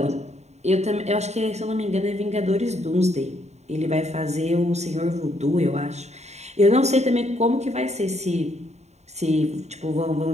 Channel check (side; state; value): left; late; 0.32 ms